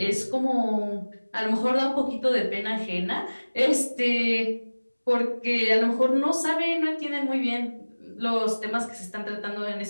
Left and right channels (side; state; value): both; inverted; correlation -1.00